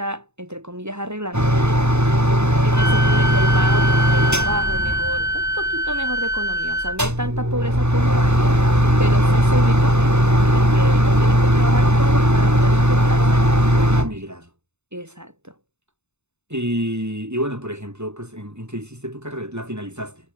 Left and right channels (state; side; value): late; left; 0.82 ms